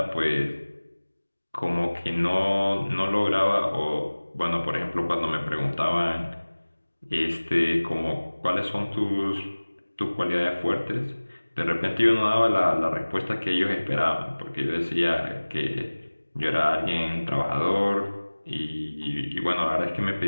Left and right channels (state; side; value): inverted; both; correlation -1.00